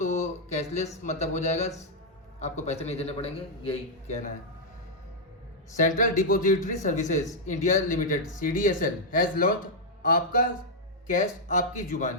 कैशलेस मतलब हो जाएगा, आपको पैसे नहीं देने पड़ेंगे, यही कहना है। Central depository services India limited CDSL has launch आपका कैश आपकी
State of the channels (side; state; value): both; normal; correlation -0.05